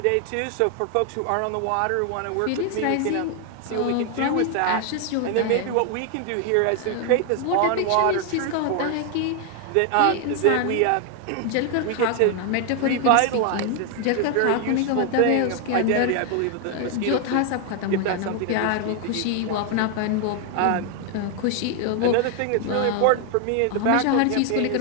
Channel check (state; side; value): different; both; correlation 0.00